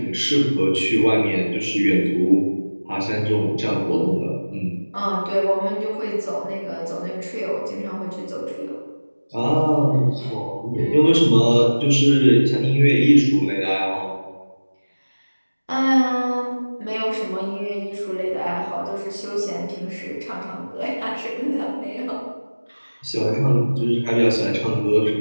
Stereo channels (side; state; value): both; inverted; correlation -1.00